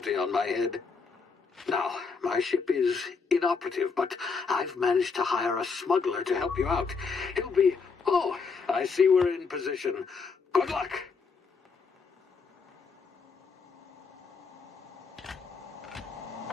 on my head. Now, my ship is inoperative, but I've managed to hire a smuggler to help you out. He'll be... Oh, I see we're in position. Good luck!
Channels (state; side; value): quieter; right; 5.0 dB